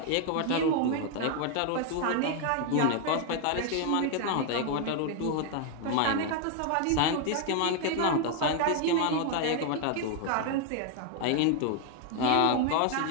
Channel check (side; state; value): both; different; correlation 0.00